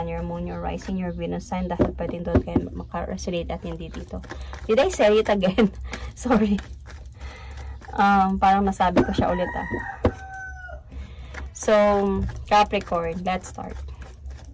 your Moon, your Rising, your Venus sign, dahil pwedeng doon kayo maka-resonate at hindi dito. Did I say it again? Sorry. Parang nasabi ko siya ulit So, Capricorn, let's start.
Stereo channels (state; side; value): identical; both; correlation 1.00